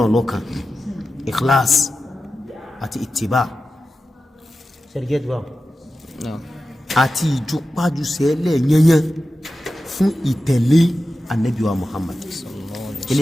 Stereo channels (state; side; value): normal; both; correlation 0.93